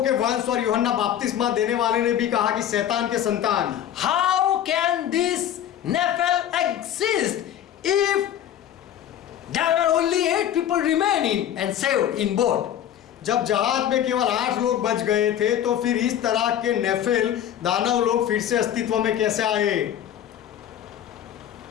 के वंश, और यूहन्ना बपतिस्मा देने वाले ने भी कहा कि शैतान के संतान। How can this Nephil exist if there are only 8 people remaining and saved in boat? जब जहाज में केवल 8 लोग बच गए थे, तो फिर इस तरह के नेफिल दानव लोग फिर से अस्तित्व में कैसे आए?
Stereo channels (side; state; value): right; quieter; 10.6 dB